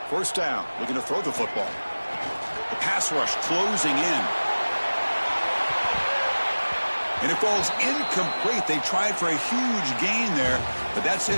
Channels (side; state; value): both; inverted; correlation -1.00